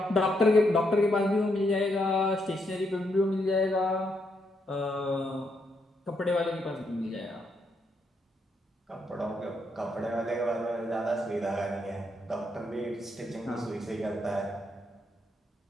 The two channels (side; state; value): both; normal; correlation 0.78